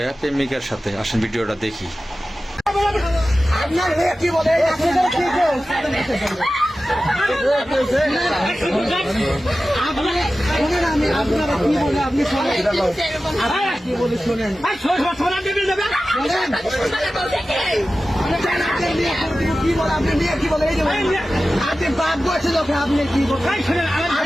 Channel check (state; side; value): normal; both; correlation 0.95